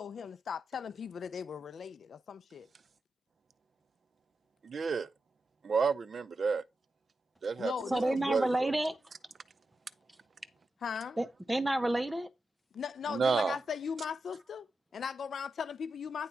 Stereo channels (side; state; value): both; normal; correlation 0.88